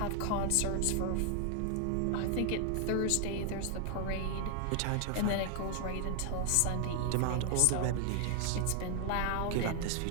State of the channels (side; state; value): both; different; correlation 0.00